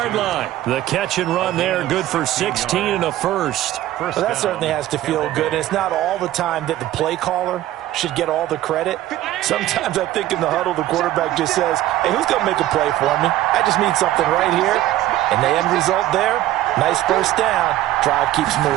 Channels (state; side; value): quieter; left; 14.3 dB